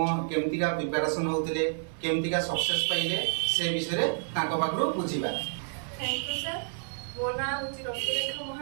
केमतिका प्रिपरेशन होउतिले केमतिका सक्सेस पाइले से विषय रे तांको पाखरु बुझिबा। Thank you sir. मो ना होची रश्मिरेखा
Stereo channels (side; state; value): left; silent; 58 dB below the other